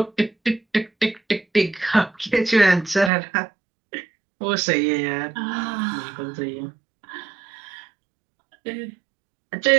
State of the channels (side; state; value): left; drops out; at 3.1 s